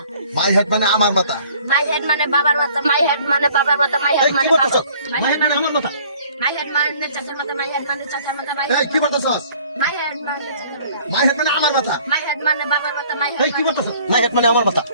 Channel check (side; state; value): both; inverted; correlation -0.55